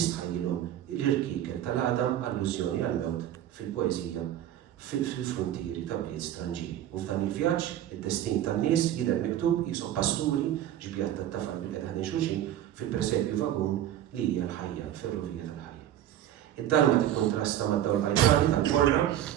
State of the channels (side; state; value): left; quieter; 11.8 dB